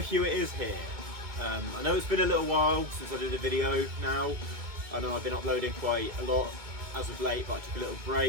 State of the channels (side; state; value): left; late; 2.2 ms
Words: it is here. I know it's been a little while since I did a video now. I know I've been uploading quite a lot as of late, but I took a little